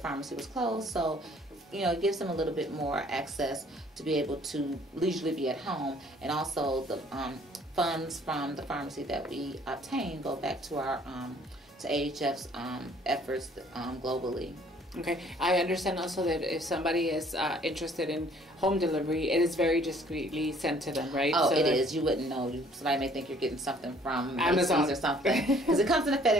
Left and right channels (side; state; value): both; normal; correlation 0.58